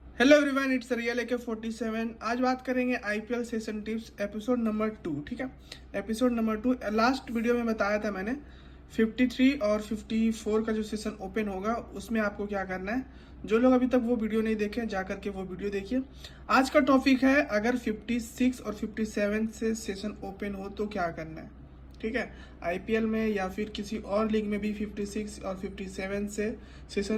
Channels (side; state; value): both; identical; correlation 1.00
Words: Hello everyone, it's real AK47। आज बात करेंगे IPL session tips episode number 2। ठीक है, एपिसोड नंबर 2। लास्ट वीडियो में बताया था मैंने 53 और 54 का जो सेशन ओपन होगा उसमें आपको क्या करना है। जो लोग अभी तक वो वीडियो नहीं देखे जा करके वो वीडियो देखिए। आज का टॉपिक है अगर 56 और 57 से सेशन ओपन हो तो क्या करना है। ठीक है, आईपीएल में या फिर किसी और लीग में भी 56 और 57 से सेशन